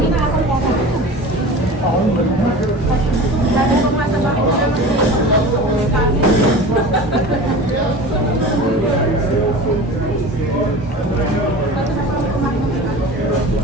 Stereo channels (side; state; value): both; normal; correlation 0.36